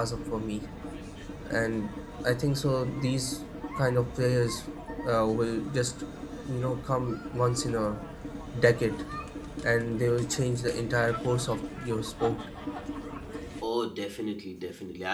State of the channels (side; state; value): both; identical; correlation 1.00